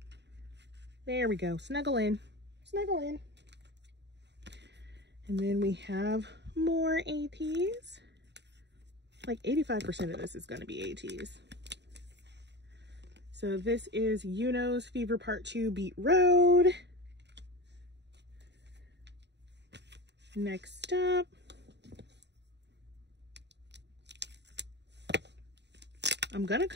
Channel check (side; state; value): left; late; 0.50 ms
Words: There we go. Snuggle in. Snuggle in. And then we have more Ateez. Like 85% of this is going to be Ateez. So this is Yuno's Fever Part 2 Beat Road. Next up, I'm gonna